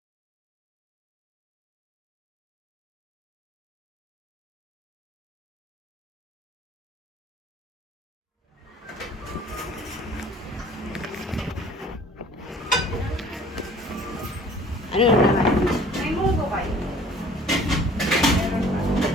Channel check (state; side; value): normal; both; correlation 0.51